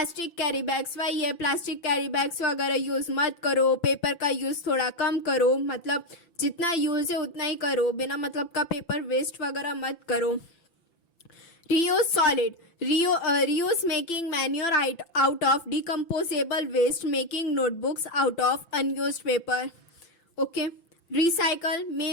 carry bags. वही है, plastic carry bags वगैरह use मत करो, paper का use थोड़ा कम करो, मतलब जितना यूज है उतना ही करो, बिना मतलब का पेपर वेस्ट वगैरह मत करो। Reuse solid, reuse making manure out of decomposable waste, making notebooks out of unused paper. Okay, recycle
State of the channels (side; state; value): right; late; 5.9 ms